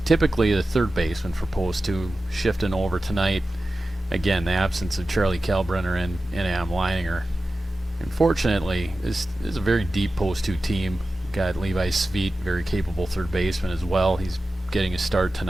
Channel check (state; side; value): normal; both; correlation 0.94